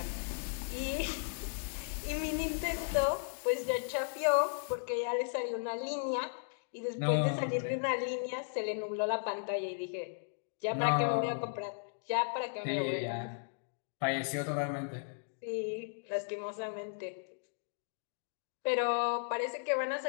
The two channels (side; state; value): right; silent; digital silence